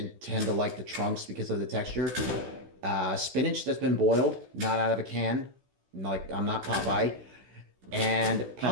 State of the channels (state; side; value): late; left; 16 ms